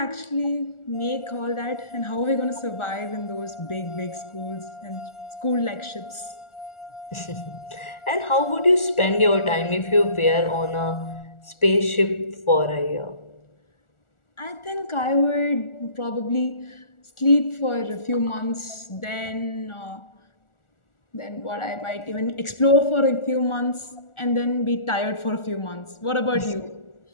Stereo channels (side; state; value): right; late; 1.4 ms